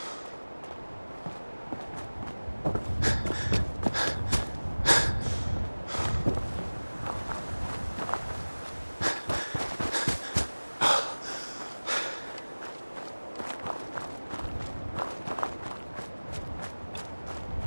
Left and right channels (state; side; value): inverted; both; correlation -1.00